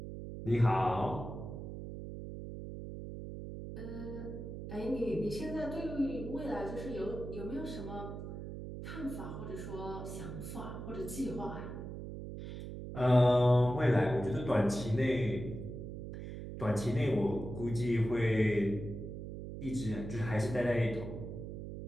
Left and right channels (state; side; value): noise; right; hum, 8 dB below the sound